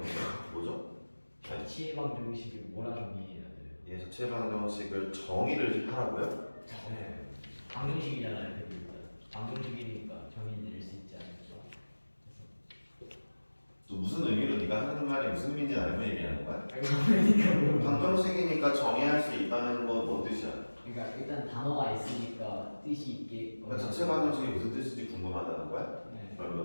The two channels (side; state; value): both; inverted; correlation -1.00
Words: 뭐죠? 자취방 정식을 뭐라 정의해야 돼요? 예, 자체 방정식을 정의를 하라고요? 네 방정식이잖아요. 일단 방정식이니까 정의 내릴 수 있지 않을까. 또 무슨 의미로 네가 하는 말이 무슨 의미인지 알고 얘기하는 거야? 그러니까 방정식이니까 정의할 수 있다는 건 뭔 뜻이야? 그러니까 일단 단어가 있으니까 뜻이 있게. 그러니까 자체 방정식이 무슨 뜻인지 궁금하다는 거야? 네.